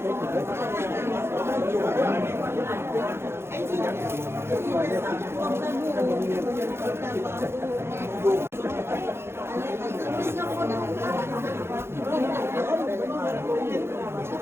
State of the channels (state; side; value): late; left; 0.12 ms